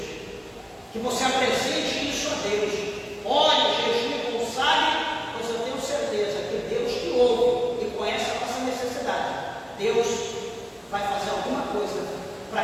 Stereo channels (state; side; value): identical; both; correlation 1.00